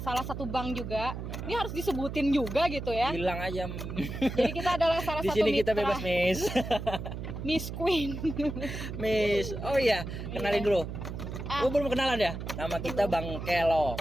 salah satu bank juga. Ini harus disebutin juga gitu ya. bilang aja. Jadi kita adalah salah Di satu sini kita mitra bebas, Miss. Miss Queen. Miss. Oh iya, kenalin dulu. Belum kenalan ya? Nama kita Bang Kelo.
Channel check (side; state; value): right; noise; hum, 7 dB below the sound